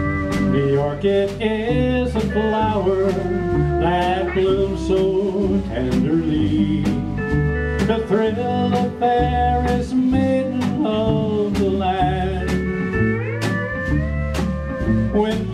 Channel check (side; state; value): both; identical; correlation 1.00